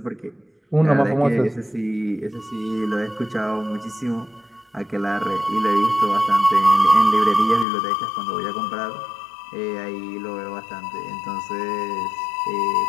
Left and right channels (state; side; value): drops out; right; at 7.7 s